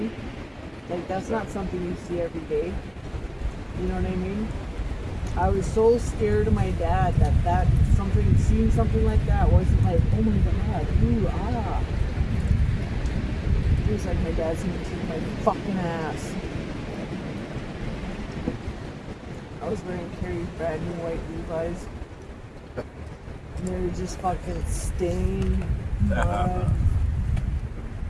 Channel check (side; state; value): both; identical; correlation 1.00